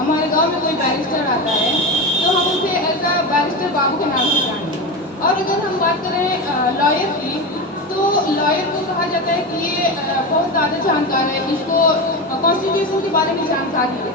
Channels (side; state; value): both; normal; correlation 0.20